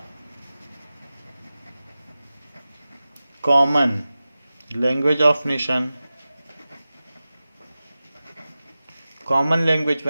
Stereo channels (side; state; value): both; inverted; correlation -0.95